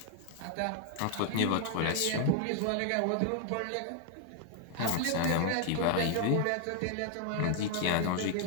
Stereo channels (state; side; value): different; both; correlation 0.00